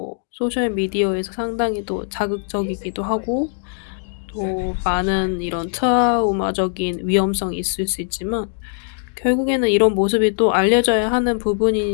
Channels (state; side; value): silent; right; digital silence